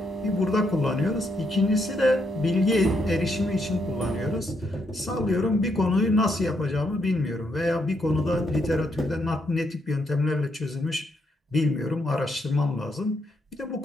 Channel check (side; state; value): both; normal; correlation 0.77